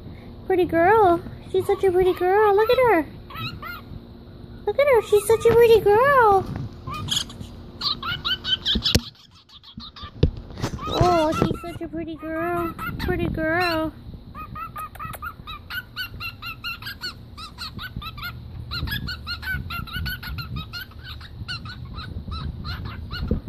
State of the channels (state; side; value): identical; both; correlation 1.00